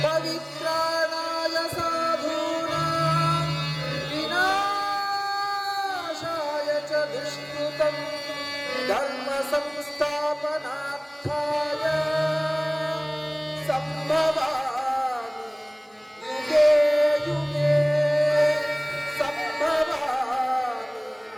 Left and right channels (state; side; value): identical; both; correlation 1.00